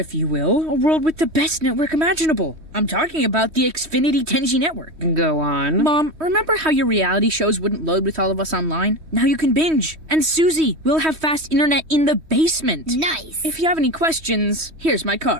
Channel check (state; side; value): late; left; 3.1 ms